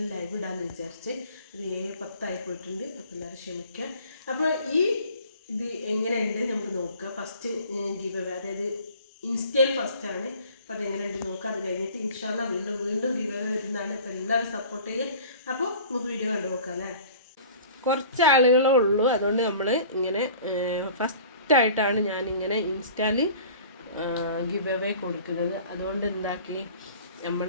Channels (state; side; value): inverted; both; correlation -0.46